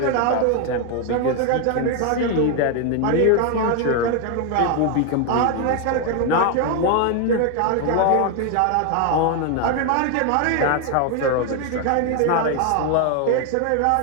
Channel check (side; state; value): both; different; correlation 0.01